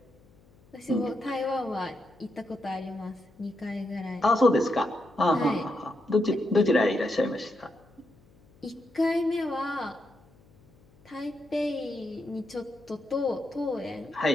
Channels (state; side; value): noise; left; hum, 29 dB below the sound